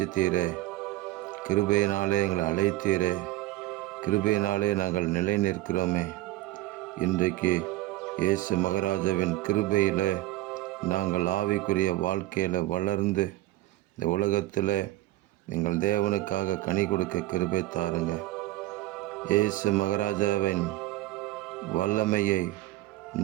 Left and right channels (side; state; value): left; quieter; 16.6 dB